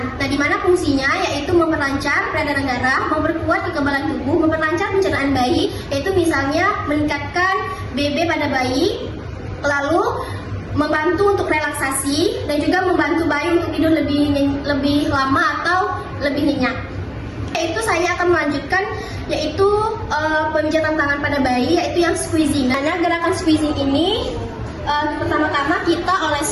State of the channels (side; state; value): both; identical; correlation 1.00